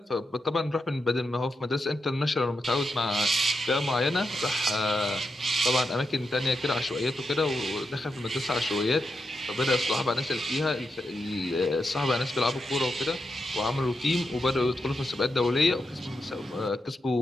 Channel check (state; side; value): normal; both; correlation 0.86